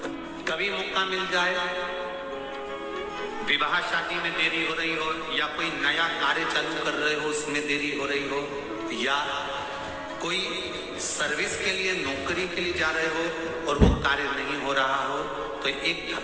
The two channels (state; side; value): identical; both; correlation 1.00